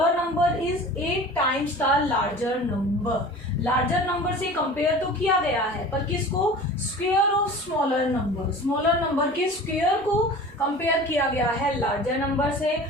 number is 8 times the larger number. Larger number से कंपेयर तो किया गया है पर किसको, square of smaller number, smaller number के स्क्वायर को कंपेयर किया गया है लार्जर नंबर से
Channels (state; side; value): normal; both; correlation 0.39